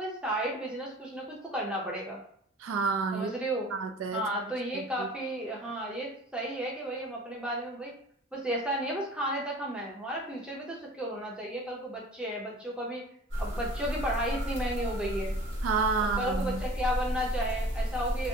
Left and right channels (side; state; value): both; normal; correlation 0.45